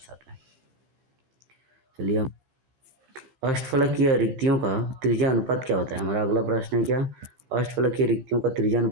है। चलिए हम अष्टफलकीय रिक्तियों का त्रिज्या अनुपात क्या होता है, हमारा अगला प्रश्न है क्या, अष्टफलकीय रिक्तियों का त्रिज्या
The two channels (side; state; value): left; late; 15 ms